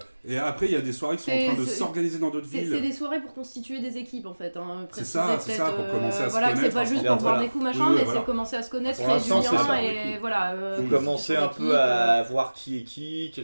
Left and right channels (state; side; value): inverted; both; correlation -1.00